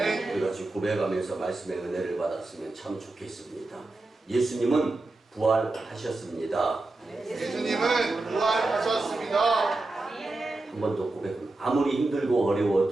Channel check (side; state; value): left; quieter; 3.0 dB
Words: 우리 같이 고백하면서 말씀의 은혜를 받았으면 참 좋겠습니다. 예수님은 부활하셨습니다. 예수님은 부활하셨습니다. 한 번 더 고백합니다. 아무리 힘들고